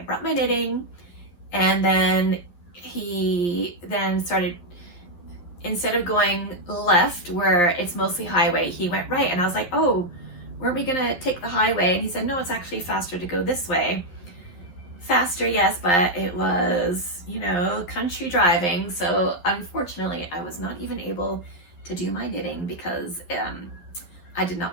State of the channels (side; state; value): right; late; 11 ms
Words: brought my knitting, and then he then started, instead of going left where it's mostly highway, he went right. And I was like, oh, weren't we gonna take the highway? And he said, no, it's actually faster to go this way. Faster, yes, but it was, you know, country driving. So unfortunately, I was not even able to do my knitting because I did not